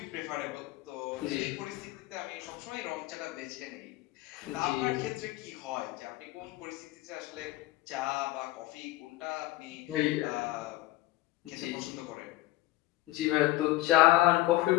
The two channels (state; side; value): quieter; right; 17.1 dB